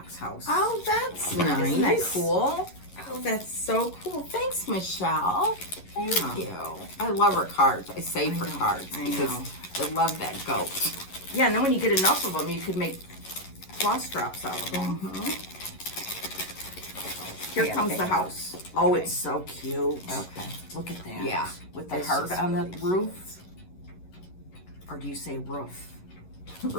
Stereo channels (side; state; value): right; late; 11 ms